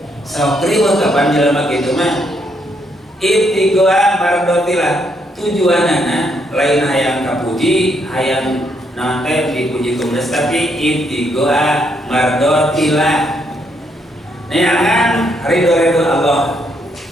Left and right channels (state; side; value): normal; both; correlation 0.74